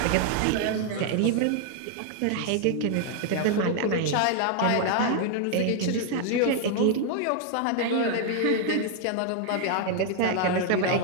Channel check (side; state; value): both; different; correlation 0.00